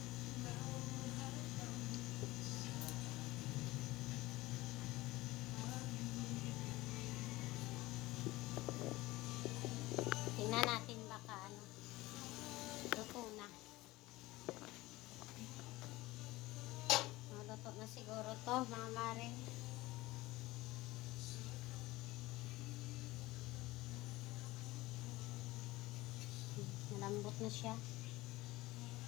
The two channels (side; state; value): right; quieter; 19.2 dB